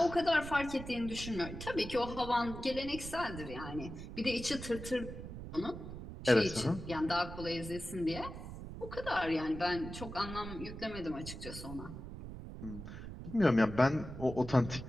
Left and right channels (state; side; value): noise; right; rumble, 10 dB below the sound